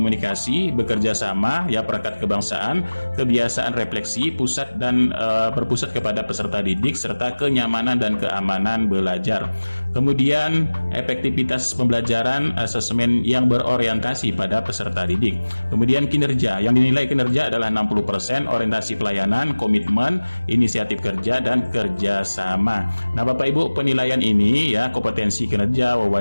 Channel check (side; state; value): both; inverted; correlation -1.00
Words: bekerja sama, ya perangkat kebangsaan, kebiasaan refleksi, pusat dan berpusat kepada peserta didik, serta kenyamanan dan keamanan belajar. Kemudian efektivitas pembelajaran, asesmen yang berorientasi pada peserta didik. Kemudian kinerja, yang dinilai kinerja adalah 60%, orientasi pelayanan, komitmen, inisiatif kerja, dan kerjasama. Nah, Bapak Ibu, penilaian ini ya, kompetensi kinerja,